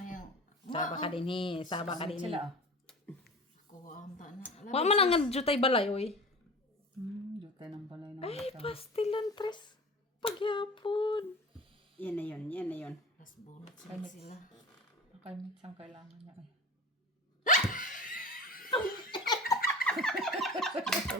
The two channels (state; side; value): normal; both; correlation 0.34